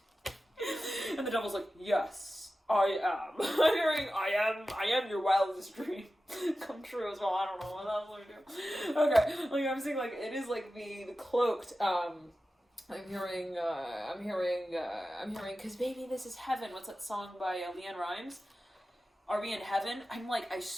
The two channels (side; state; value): both; normal; correlation 0.94